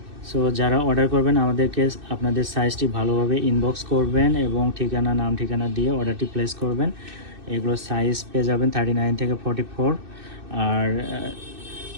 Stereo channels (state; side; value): late; left; 2.6 ms